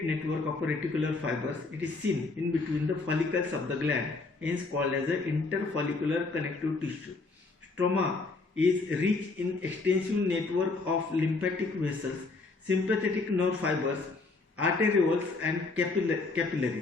network of reticular fibers. It is seen in between the follicles of the gland, hence called as the interfollicular connective tissue. Stroma is rich in extensive network of lymphatic vessels, sympathetic nerve fibers, arterioles and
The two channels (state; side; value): quieter; right; 3.7 dB